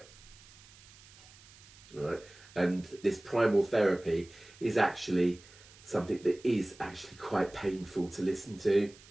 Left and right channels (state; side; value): noise; right; hiss, 22 dB below the sound